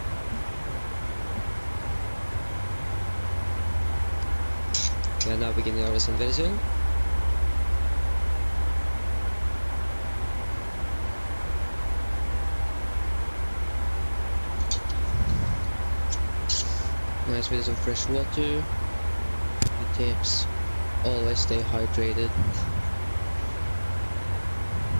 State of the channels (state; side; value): inverted; both; correlation -1.00